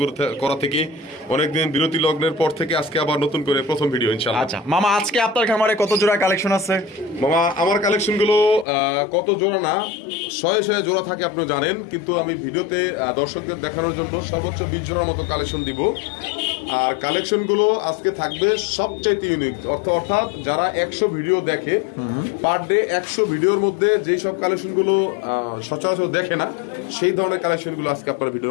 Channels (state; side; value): drops out; right; at 8.7 s